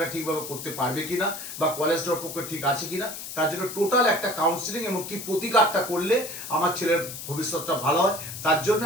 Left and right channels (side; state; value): left; noise; hiss, 9 dB below the sound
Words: ঠিকভাবে করতে পারবে কিনা বা কলেজটার পক্ষে ঠিক আছে কিনা, তার জন্য টোটাল একটা কাউন্সিলিং এবং কি প্রতিকারটা করলে আমার ছেলের ভবিষ্যৎটা ভালো হয়, তার জন্য